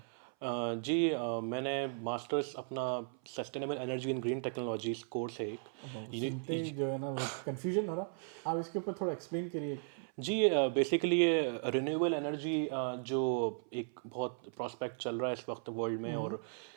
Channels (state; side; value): silent; left; 53 dB below the other